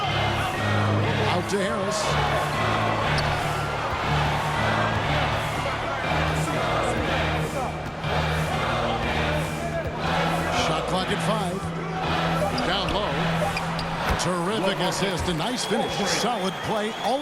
Out to Harris. Shot clock at 5. Down low. Terrific assist. A nice finish. Solid play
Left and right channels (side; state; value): both; identical; correlation 1.00